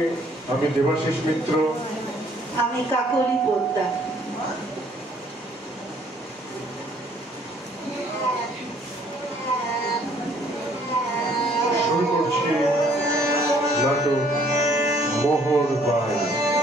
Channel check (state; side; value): normal; both; correlation 0.62